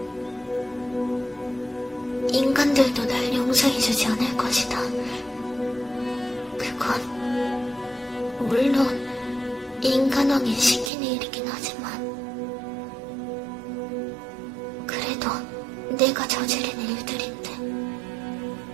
인간들도 날 용서해주지 않을 것이다. 그건 물론 인간왕이 시키는 일이긴 하지만 그래도 내가 저지른 일들인데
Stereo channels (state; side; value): drops out; left; at 10.9 s